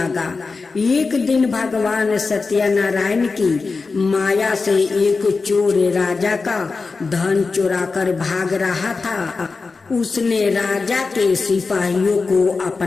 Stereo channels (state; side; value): quieter; right; 4.3 dB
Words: एक दिन भगवान सत्यनारायण की माया से एक चोर राजा का धन चुराकर भाग रहा था। उसने राजा के सिपाहियों को